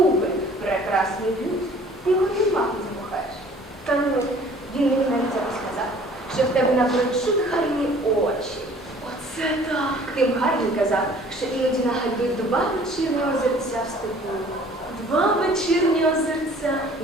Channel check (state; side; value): normal; both; correlation 0.52